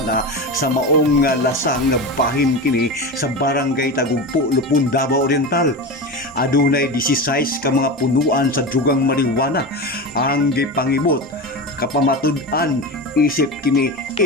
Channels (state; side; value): normal; both; correlation 0.23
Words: sa maong lasang bahin kini sa barangay Tagumpo, Lupon, Davao Oriental. Adunay 16 ka mga punuan sa drugang marijuana ang gipangibot kapamatud-an isip kini